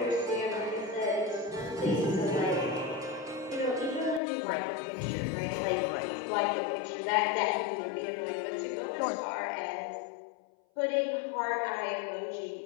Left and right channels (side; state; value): right; drops out; at 4.2 s